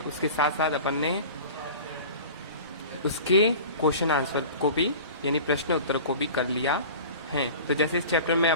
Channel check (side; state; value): both; inverted; correlation -0.38